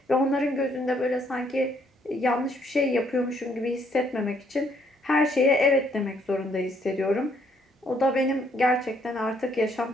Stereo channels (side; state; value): both; normal; correlation 0.68